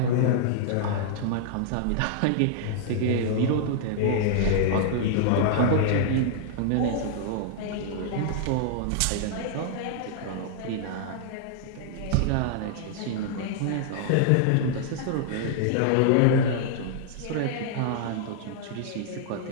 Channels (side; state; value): both; different; correlation -0.01